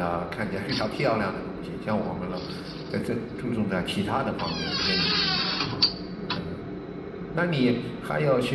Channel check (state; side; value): identical; both; correlation 1.00